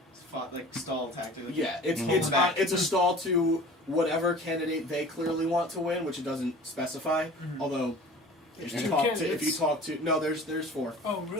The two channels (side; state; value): both; normal; correlation 0.43